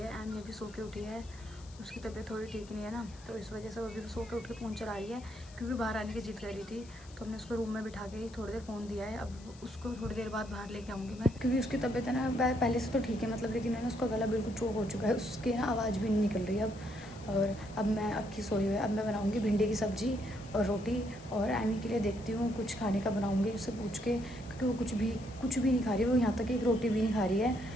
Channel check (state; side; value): noise; left; hiss, 22 dB below the sound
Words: एमी अभी सो के उठी है। उसकी तबीयत थोड़ी ठीक नहीं है ना, तो इस वजह से वो अभी सो के उठ के फ़ोन चला रही है, क्योंकि बाहर आने की जिद कर रही थी। तो हमने उसको रूम में बिठा के थोड़ी देर फ़ोन दिया है। अब उसको थोड़ी देर बाद बाहर लेके आऊँगी मैं, क्योंकि उसकी तबीयत है ना पहले से तो ठीक है मतलब, लेकिन है ना उसका गला बिल्कुल चोक हो चुका है, उसकी ना आवाज़ भी नहीं निकल रही है अब। और अब मैं अक्की सोई हुई है, अब मैं बनाऊँगी भिंडी की सब्ज़ी और रोटी। और एमी के लिए देखती हूँ कुछ खाने का बनाऊँगी उससे पूछ के, क्योंकि वो कुछ भी नहीं खा रही है। वो यहाँ तक एक रोटी भी नहीं खा रही है।